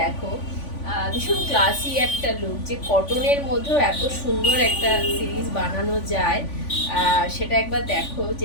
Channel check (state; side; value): late; right; 3.5 ms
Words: ভীষণ ক্লাসি একটা লুক, যে কটনের মধ্যেও এত সুন্দর একটা সিরিজ বানানো যায় সেটা একবার দেখো।